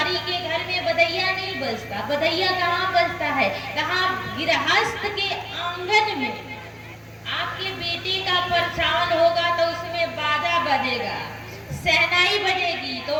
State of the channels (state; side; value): identical; both; correlation 1.00